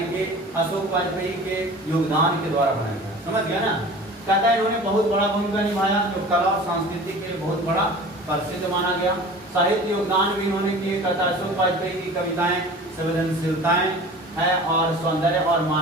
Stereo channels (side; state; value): both; normal; correlation 0.41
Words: कि अशोक वाजपेयी के योगदान के द्वारा बनाया गया। समझ गया ना? कहता है इन्होंने बहुत बड़ा भूमिका निभाया, जो कला और संस्कृति के लिए बहुत बड़ा प्रसिद्ध माना गया। साहित्य योगदान भी इन्होंने किए। कहता है अशोक वाजपेयी की कविताएं संवेदनशीलताएं है और सौंदर्य और